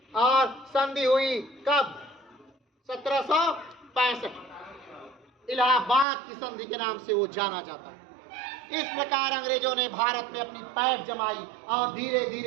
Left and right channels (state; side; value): drops out; left; at 6.1 s